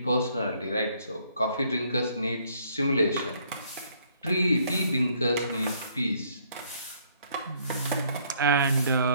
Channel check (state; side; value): inverted; both; correlation -0.65